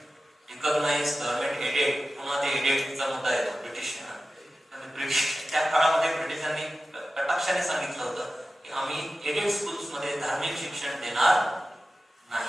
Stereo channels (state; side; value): normal; both; correlation 0.95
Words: रिकॉग्नाइज, गव्हर्नमेंट एडेड. पुन्हा ते एडेडचा मुद्दा येतो ब्रिटिशांना. त्या काळामध्ये ब्रिटिशांनी कटाक्षाने सांगितलं होतं की आम्ही एडेड स्कूल्स मध्ये धार्मिक शिक्षण देणार